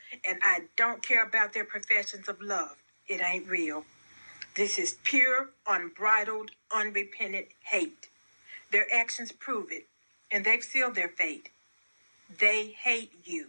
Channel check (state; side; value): inverted; both; correlation -1.00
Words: And I don't care about their professions of love. It ain't real. This is pure, unbridled, unrepentant hate. Their actions prove it, and they've sealed their fate. They hate